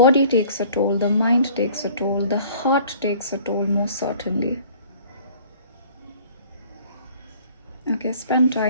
takes a toll, the mind takes a toll, the heart takes a toll, most certainly. Okay, spend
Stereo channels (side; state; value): both; inverted; correlation -0.52